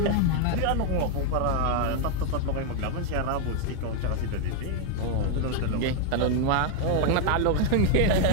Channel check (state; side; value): different; both; correlation 0.00